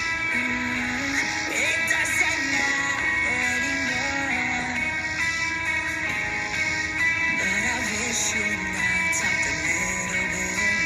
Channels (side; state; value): both; identical; correlation 1.00